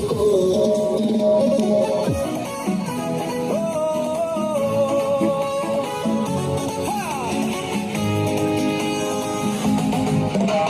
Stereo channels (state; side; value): identical; both; correlation 1.00